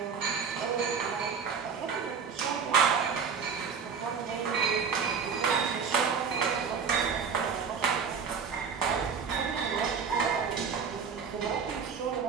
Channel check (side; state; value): left; quieter; 6.1 dB